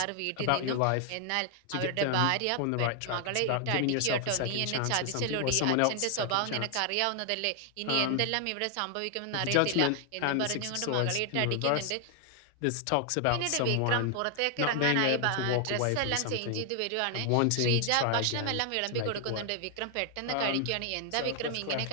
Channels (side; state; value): both; different; correlation 0.00